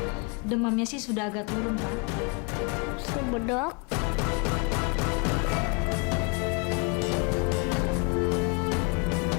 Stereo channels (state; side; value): quieter; right; 32.8 dB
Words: Demamnya sih sudah agak turun, Pak. Subedok.